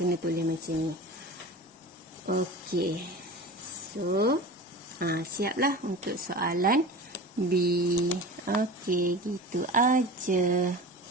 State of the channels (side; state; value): both; normal; correlation 0.33